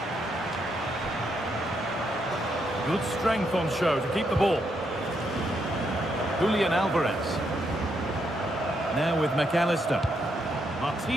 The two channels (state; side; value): normal; both; correlation 0.78